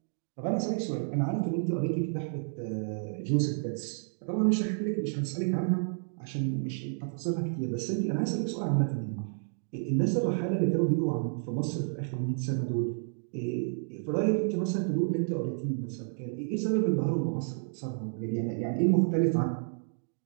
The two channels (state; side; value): silent; left; digital silence